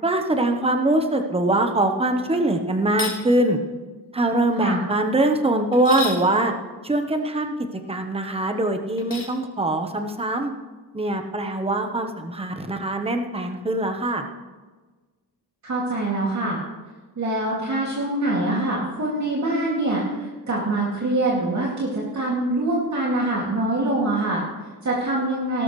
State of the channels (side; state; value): both; normal; correlation 0.31